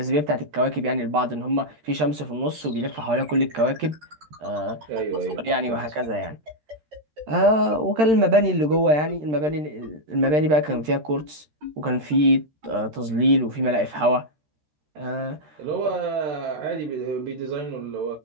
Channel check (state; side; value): late; left; 13 ms